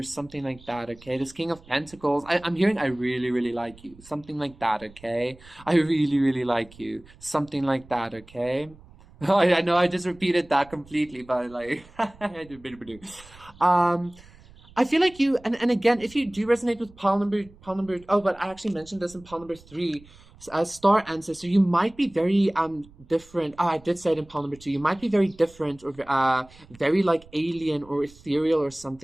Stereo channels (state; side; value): noise; right; rumble, 24 dB below the sound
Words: something like that, okay? This King of Pentacles, I'm hearing I really, really like you. Something like that, okay? I really, really like you. Something like that, okay? I know I just repeated that completely, but like, I feel like you, and again, if you do resonate with pile number, oh, but I actually mentioned this in pile number 3, as Star Ancestor, you might be very different. Oh, I did say it in pile number 2. You might be very different or very like alien or ethereal or